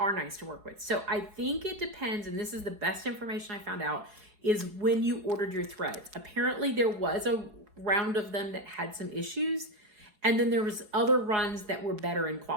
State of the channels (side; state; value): left; late; 4.7 ms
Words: nice to work with. So I think it depends, and this is the best information I found out, is when you ordered your threads. Apparently there was a round of them that had some issues, and then there was other runs that were better in